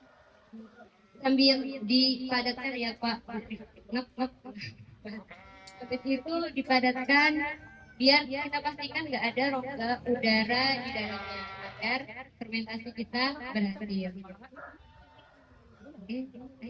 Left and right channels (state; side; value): identical; both; correlation 1.00